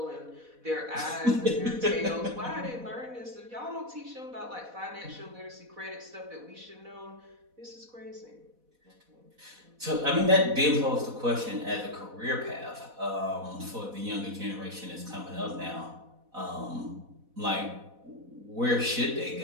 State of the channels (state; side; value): late; left; 4.1 ms